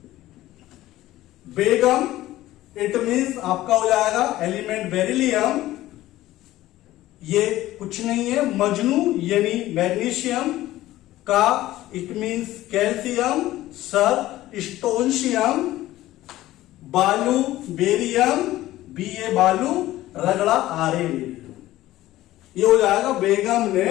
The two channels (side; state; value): right; quieter; 15.6 dB